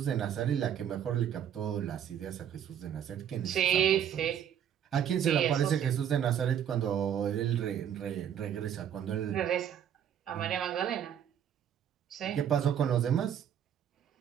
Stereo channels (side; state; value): left; quieter; 9.3 dB